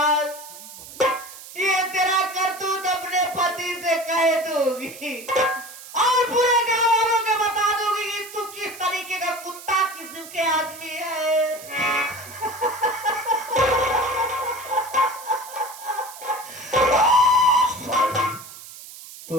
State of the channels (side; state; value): right; noise; hiss, 15 dB below the sound